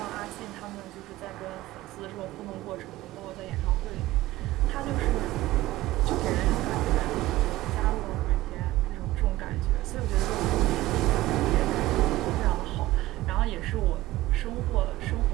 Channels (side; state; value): left; quieter; 16.7 dB